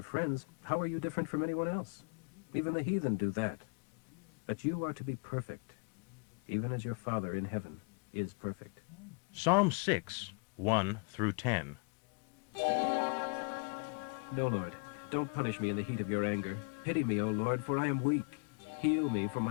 friends, how are you different from anyone else? Even the heathen do that. But you are to be perfect, even as your Father in heaven is perfect. Psalm 6:1 through 10. No, Lord, don't punish me in the heat of your anger. Pity me, O Lord, for I am weak. Heal me, for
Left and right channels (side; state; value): right; quieter; 34.8 dB